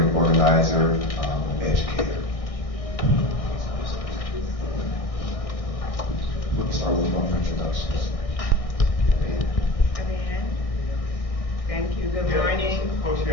educator. We'll start with one introductions. Thank you. Good morning. Folks, you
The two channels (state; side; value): late; right; 1.6 ms